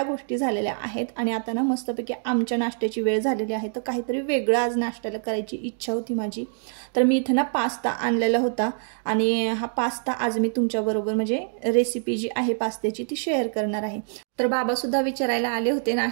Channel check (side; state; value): left; silent; 59 dB below the other